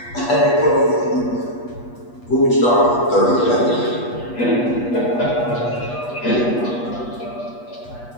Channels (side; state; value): right; late; 8.3 ms